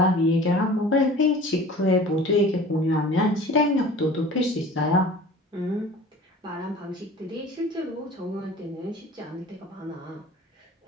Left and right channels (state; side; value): normal; both; correlation 0.42